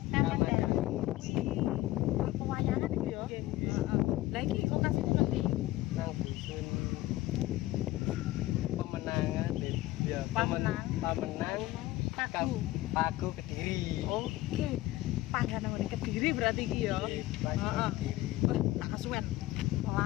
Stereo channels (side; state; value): right; quieter; 17.0 dB